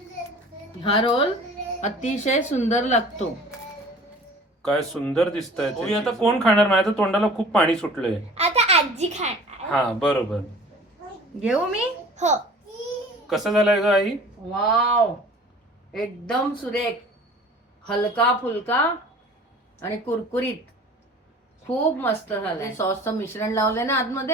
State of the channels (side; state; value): both; normal; correlation 0.45